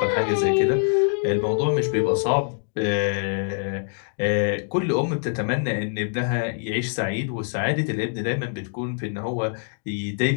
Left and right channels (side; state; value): right; silent; digital silence